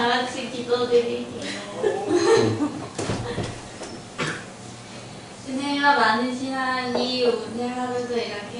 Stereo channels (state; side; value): identical; both; correlation 1.00